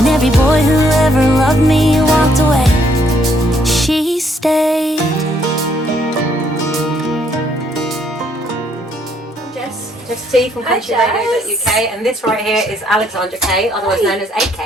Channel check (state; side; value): normal; both; correlation 0.69